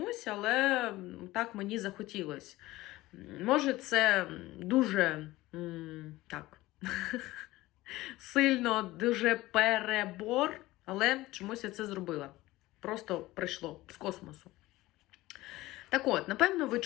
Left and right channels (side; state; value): right; quieter; 18.1 dB